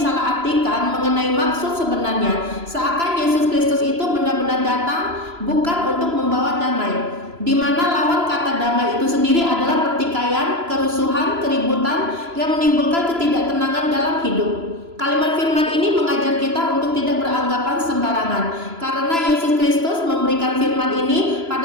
mengenai maksud sebenarnya, seakan Yesus Kristus itu benar-benar datang bukan untuk membawa damai, di mana lawan kata damai itu sendiri adalah pertikaian, kerusuhan, keributan yang menimbulkan ketidaktenangan dalam hidup. Kalimat firman ini mengajar kita untuk tidak beranggapan sembarangan, karena Yesus Kristus memberikan firman ini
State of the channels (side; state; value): left; late; 3.0 ms